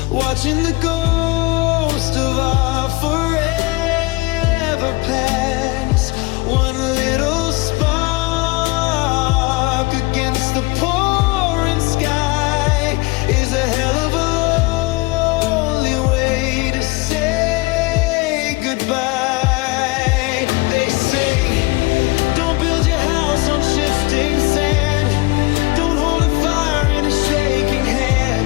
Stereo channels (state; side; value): quieter; right; 24.4 dB